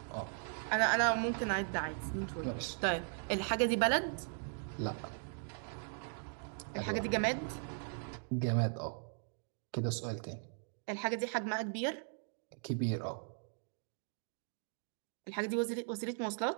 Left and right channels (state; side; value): silent; left; 52 dB below the other